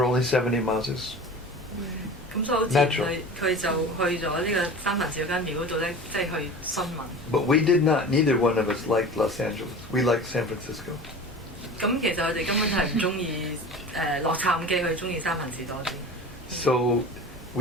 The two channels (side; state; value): both; normal; correlation 0.36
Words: only 70 miles. 咁所以好自然佢就去咗呢個三藩市嗰間廟嗰度咧，即係去詢問。But we did not. Neither one of us liked Los Angeles. We liked San Francisco. 咁其實佢哋根本係唔中意洛杉磯，佢中意三藩市多啲。So